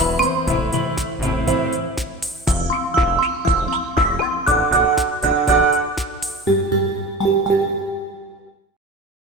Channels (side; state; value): both; normal; correlation 0.37